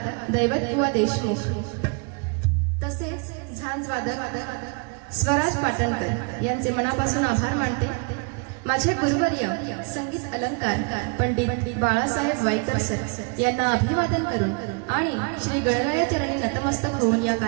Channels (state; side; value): quieter; left; 35.9 dB